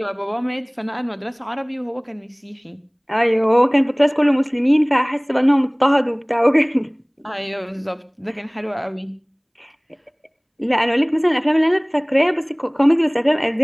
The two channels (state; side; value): identical; both; correlation 1.00